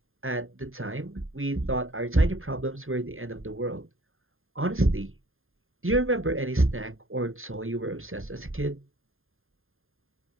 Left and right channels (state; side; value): late; left; 0.60 ms